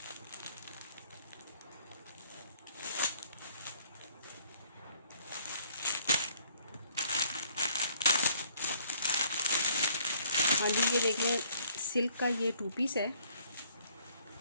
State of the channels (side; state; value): both; inverted; correlation -0.61